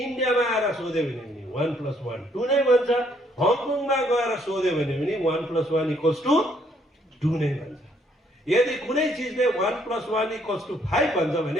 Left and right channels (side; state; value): both; normal; correlation 0.68